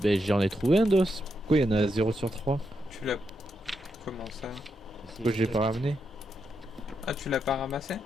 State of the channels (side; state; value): both; normal; correlation 0.83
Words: j'en ai trouvé un d'os. Pourquoi il y en a 0 sur 3? tu l'as... Comment ça? Pourquoi j'ai pas ramené? Ah, tu l'as pas ramassé?